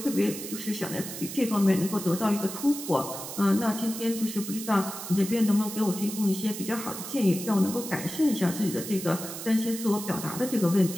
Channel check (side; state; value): right; noise; hiss, 9 dB below the sound